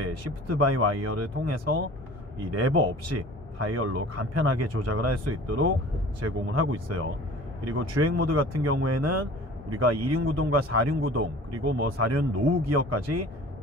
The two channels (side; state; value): both; normal; correlation 0.44